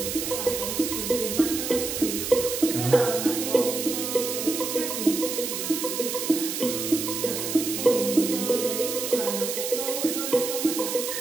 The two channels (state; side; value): noise; right; hiss, 4 dB below the sound